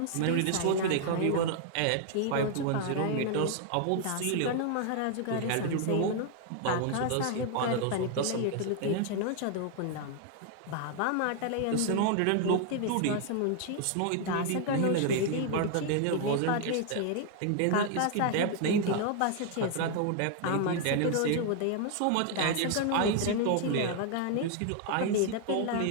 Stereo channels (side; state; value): both; different; correlation 0.00